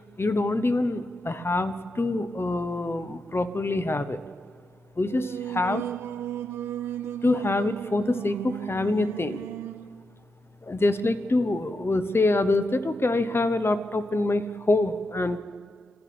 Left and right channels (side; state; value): both; normal; correlation 0.85